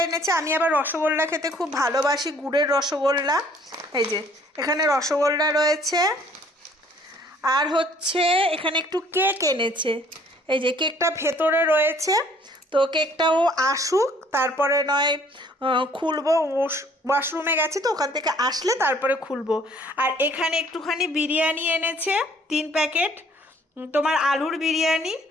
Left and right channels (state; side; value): normal; both; correlation 0.59